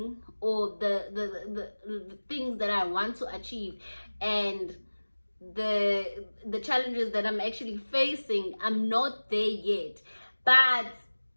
or the things that I want to achieve, and the challenges that I'm actually facing, I'm not there yet. But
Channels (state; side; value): inverted; both; correlation -1.00